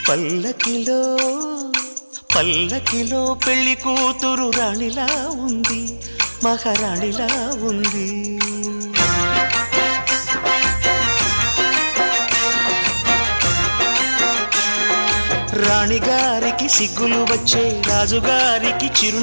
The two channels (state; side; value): inverted; both; correlation -1.00